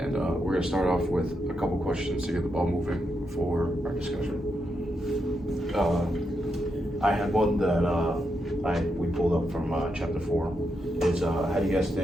And we're going to start off with a couple questions to get the ball moving for our discussion. I had one that we pulled up from chapter 4. It's how do you guys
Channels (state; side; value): normal; both; correlation 0.83